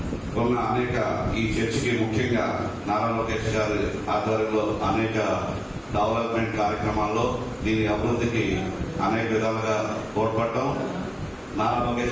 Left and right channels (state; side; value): identical; both; correlation 1.00